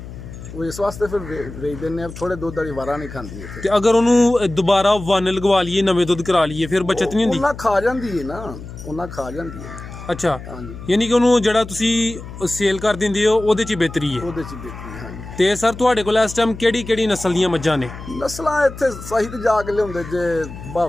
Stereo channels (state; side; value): noise; left; hum, 13 dB below the sound